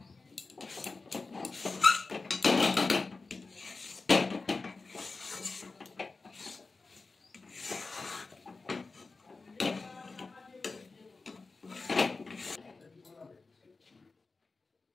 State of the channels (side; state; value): right; quieter; 3.9 dB